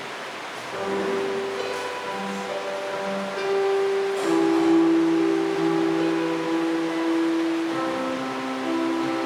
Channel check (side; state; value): both; identical; correlation 1.00